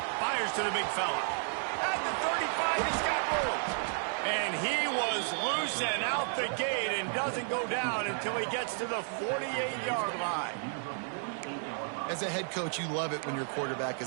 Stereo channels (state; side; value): silent; left; 56 dB below the other